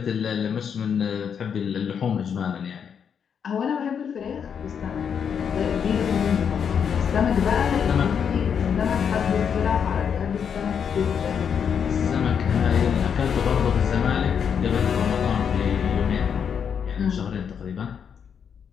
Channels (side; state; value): right; quieter; 7.4 dB